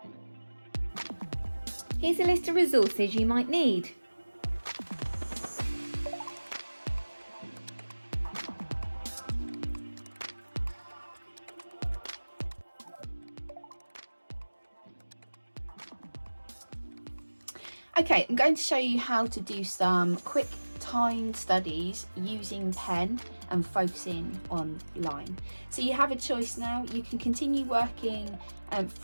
Here's a list of resources you might need. Okay, I'm going to show you how to do some quick timed studies using pen and focusing on line. So you have a choice now. You can continue working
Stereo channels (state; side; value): inverted; both; correlation -1.00